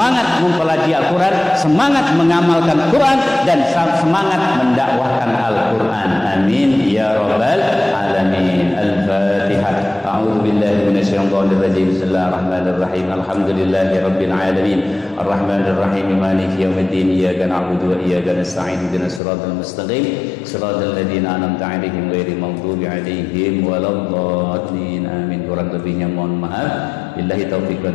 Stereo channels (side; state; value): right; drops out; at 19.2 s